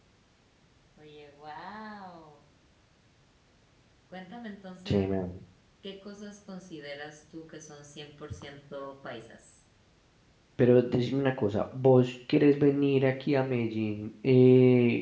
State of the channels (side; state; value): both; identical; correlation 1.00